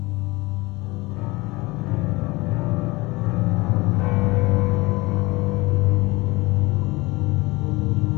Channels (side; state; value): right; quieter; 22.6 dB